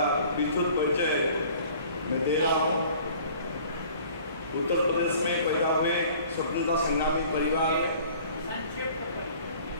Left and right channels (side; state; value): both; inverted; correlation -0.51